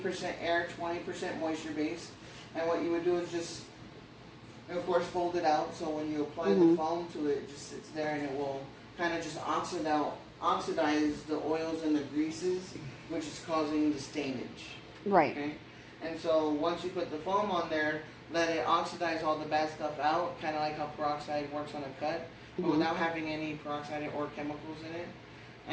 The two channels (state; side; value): identical; both; correlation 1.00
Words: air, 20% moisture base. And what you would do is just, of course, fold it out. So when you apply the foam to it, it just sits there and it will kind of just oxidize the oils and the greases, which is causing the stainage. Right. Okay? And so once you put the foam on there, let it oxidize all the bad stuff out, kind of like how peroxide works on a cut, but without having any peroxide or chemicals in it.